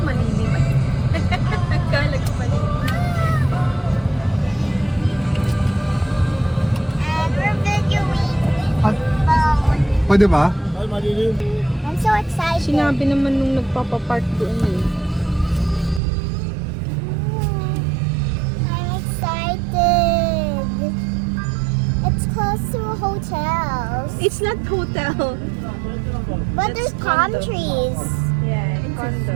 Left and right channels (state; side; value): drops out; left; at 16.0 s